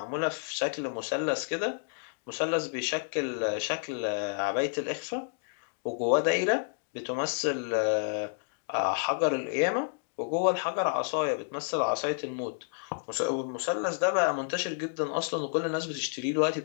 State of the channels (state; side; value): silent; right; digital silence